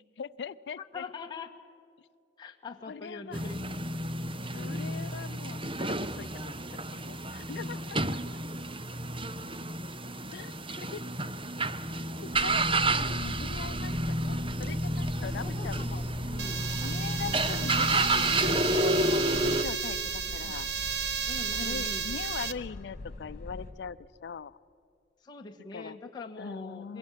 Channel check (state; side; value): normal; both; correlation 0.22